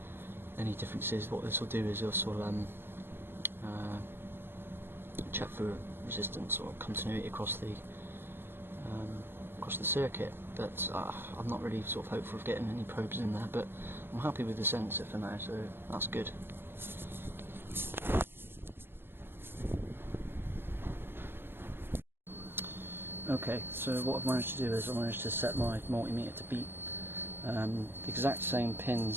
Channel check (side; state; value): left; late; 0.10 ms